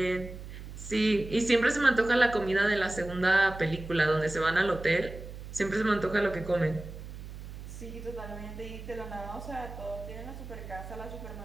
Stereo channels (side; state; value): right; noise; hum, 12 dB below the sound